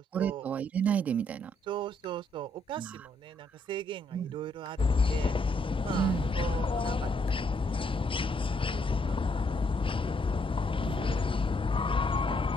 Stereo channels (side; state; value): both; normal; correlation 0.73